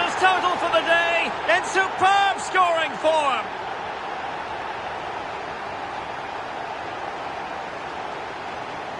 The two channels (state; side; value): identical; both; correlation 1.00